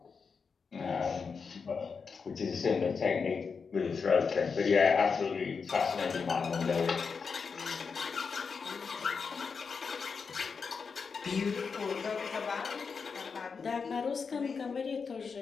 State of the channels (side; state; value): right; quieter; 5.4 dB